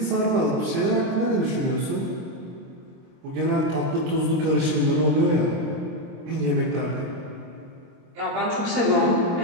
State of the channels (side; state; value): left; late; 23 ms